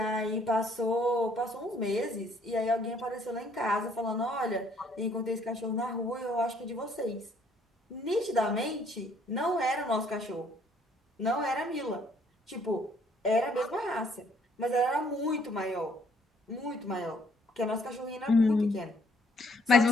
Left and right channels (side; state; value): both; normal; correlation 0.64